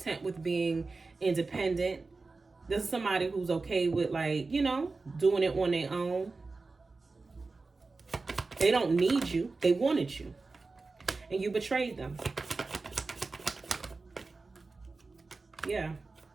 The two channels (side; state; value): left; quieter; 3.8 dB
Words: with being independent. This is somebody who's okay with, like, you know, doing it on their own. They don't need you. They wanted you. And you betrayed them. Yeah.